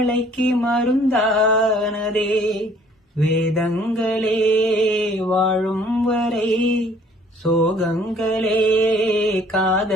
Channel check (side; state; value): both; normal; correlation 0.57